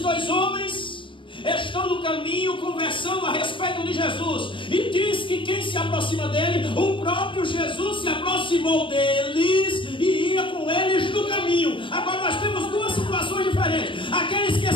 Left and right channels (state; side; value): late; right; 0.25 ms